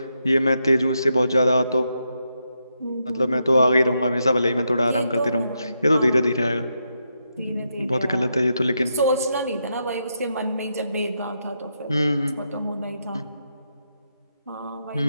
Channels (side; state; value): both; inverted; correlation -0.82